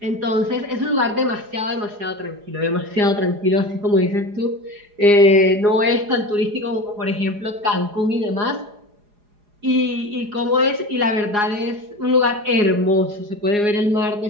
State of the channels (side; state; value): left; late; 4.8 ms